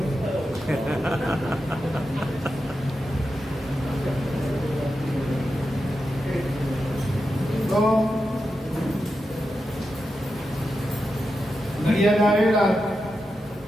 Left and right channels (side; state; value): both; normal; correlation 0.89